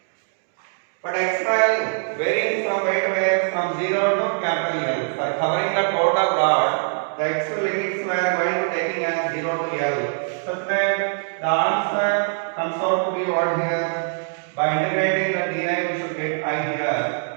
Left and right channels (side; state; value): left; silent; digital silence